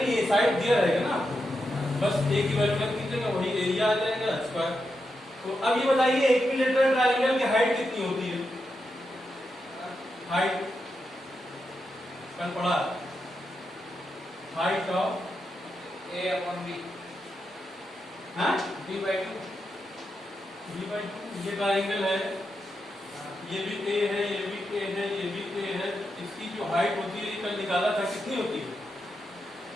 ये साइड दिया रहेगा ना, बस ए की वैल्यू रख दीजिएगा, वही एरिया आ जाएगा स्क्वायर। तो अब ये बताइए इक्विलैटरल ट्रायंगल की हाइट कितनी होती है? हाइट कल पढ़ा, हाइट ऑफ A/B, हाँ B/2, ये ट्रायंगल है, ये भी ए है, ये भी ए है, ये भी ए है, इसकी जो हाइट होती है कल निकाला था, कितनी होती है?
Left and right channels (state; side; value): normal; both; correlation 0.86